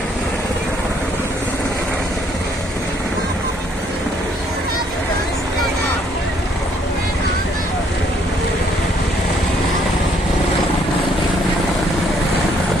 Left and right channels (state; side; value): normal; both; correlation 0.67